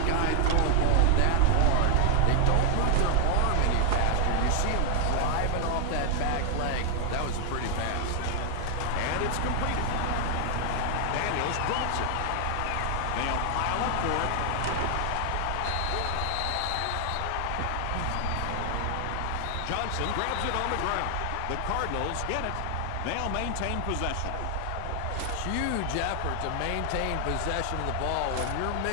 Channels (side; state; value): both; different; correlation 0.00